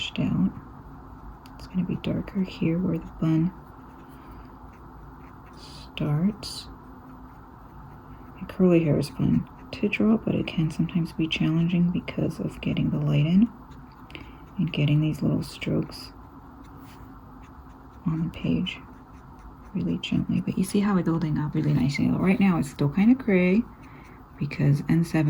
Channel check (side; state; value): both; identical; correlation 1.00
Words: out. It's going to be darker here where the bun starts. And curly hair is fun to draw, but it can sometimes be challenging because of getting the light in and getting these little strokes on the page really gently. But you see how it's building up really nicely. Right now it's still kind of gray because